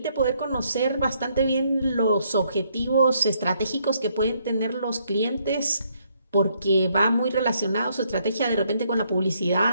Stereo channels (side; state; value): both; inverted; correlation -0.71